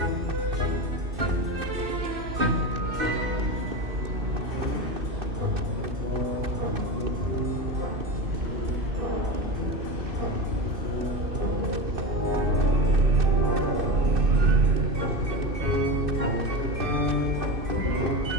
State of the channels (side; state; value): left; late; 2.6 ms